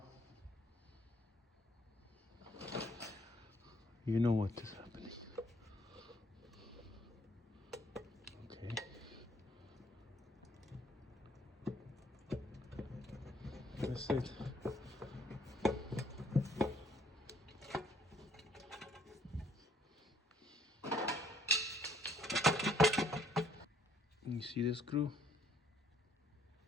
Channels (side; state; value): both; normal; correlation 0.65